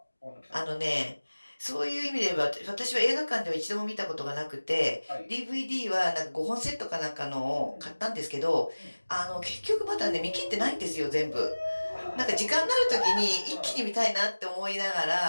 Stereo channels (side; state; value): both; inverted; correlation -1.00